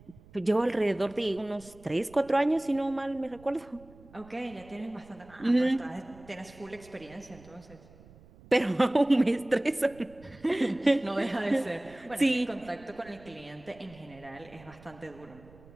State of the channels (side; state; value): right; noise; rumble, 23 dB below the sound